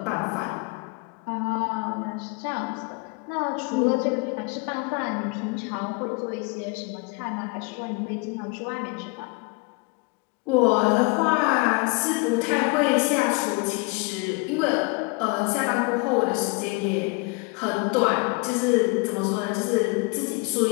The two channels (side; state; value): right; quieter; 29.1 dB